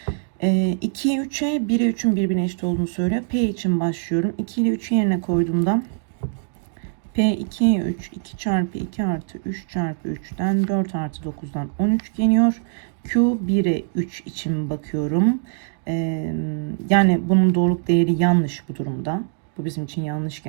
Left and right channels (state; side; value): silent; left; digital silence